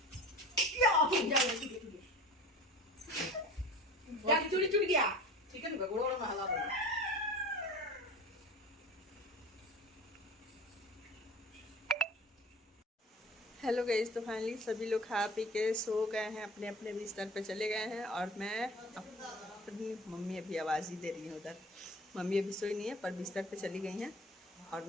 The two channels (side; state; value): both; normal; correlation 0.39